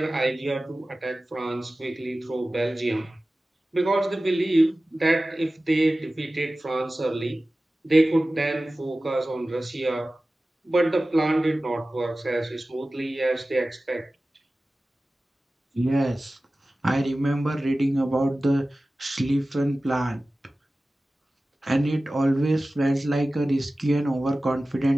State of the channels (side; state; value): both; normal; correlation 0.96